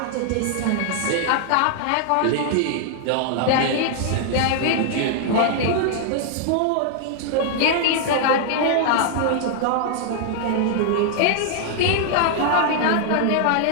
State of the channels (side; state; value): both; different; correlation -0.01